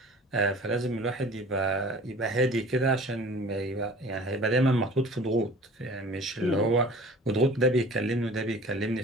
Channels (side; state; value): both; normal; correlation 0.45